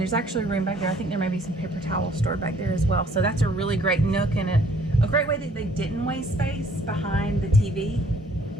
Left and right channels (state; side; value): normal; both; correlation 0.60